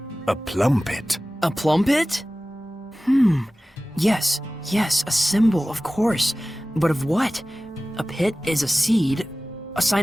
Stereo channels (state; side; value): normal; both; correlation 0.97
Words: a plumpet. A plumpet? Yes, a symbol, of course. But of what? A pit is a seed, a